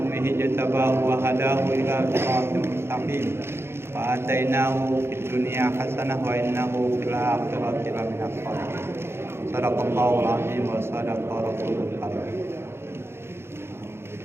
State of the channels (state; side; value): late; left; 0.12 ms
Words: jatabahu wa hadahu ila siratin mustaqim. Wa atainahu fid dunya hasanah wa innahu fil akhirati laminas shalihin. Shadaqallahul azim wa shadaqa rasulul karim.